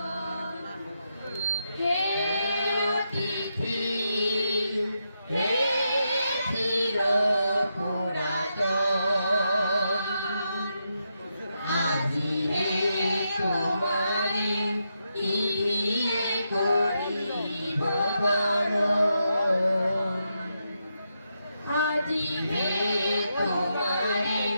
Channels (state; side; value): inverted; both; correlation -0.83